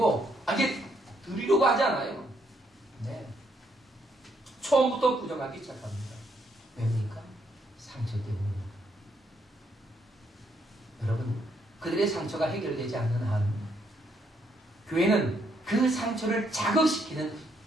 이게 들으려고 하지 않아요. 네. 처음부터 부정하기 시작합니다. 왜입니까? 상처 때문입니다. 여러분, 그들의 상처가 해결되지 않는 한 교회는 그 상처를 자극시키는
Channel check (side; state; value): both; normal; correlation 0.73